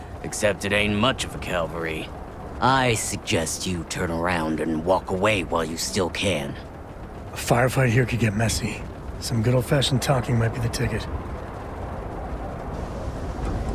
Except it ain't much of a cavalry. I suggest you turn around and walk away while you still can. A firefight here could get messy. Some good old-fashioned talking might be the ticket.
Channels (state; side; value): identical; both; correlation 1.00